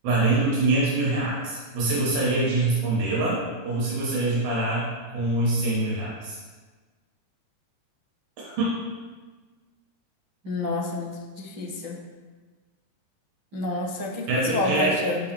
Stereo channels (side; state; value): left; late; 13 ms